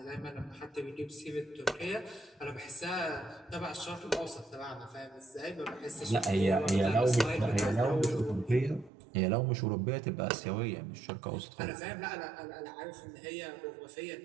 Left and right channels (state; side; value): drops out; left; at 8.9 s